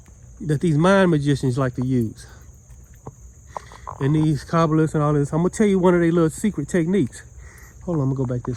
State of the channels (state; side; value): identical; both; correlation 1.00